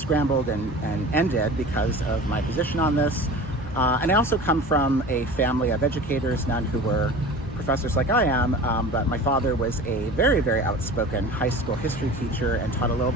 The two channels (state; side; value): normal; both; correlation 0.37